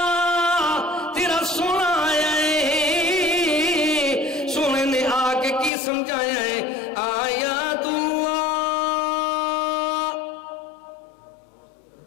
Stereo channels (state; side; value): drops out; right; at 5.7 s